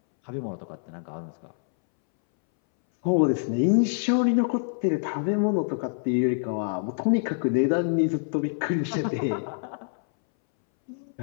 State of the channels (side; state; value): right; silent; 61 dB below the other